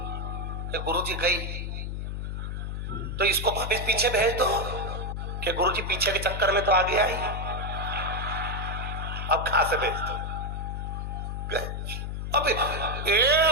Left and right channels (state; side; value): noise; left; hum, 4 dB below the sound